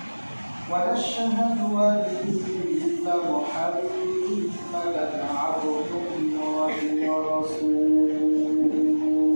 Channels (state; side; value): inverted; both; correlation -1.00